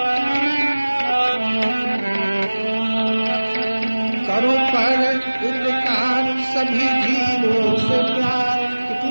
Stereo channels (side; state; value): both; inverted; correlation -1.00